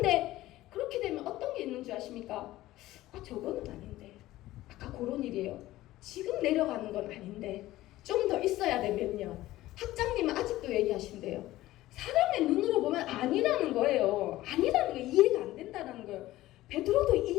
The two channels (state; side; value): quieter; right; 16.2 dB